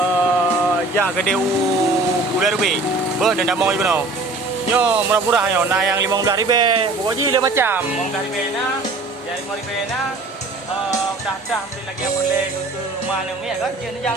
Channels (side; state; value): left; quieter; 3.2 dB